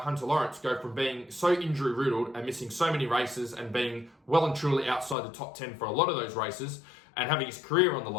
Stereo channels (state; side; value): drops out; right; at 5.2 s